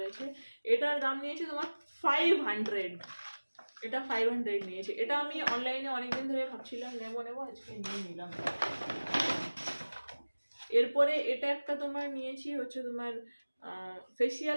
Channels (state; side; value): inverted; both; correlation -1.00